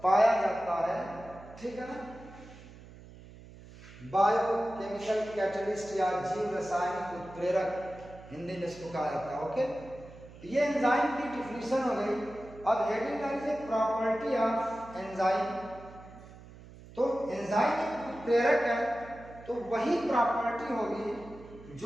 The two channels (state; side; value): noise; right; hum, 18 dB below the sound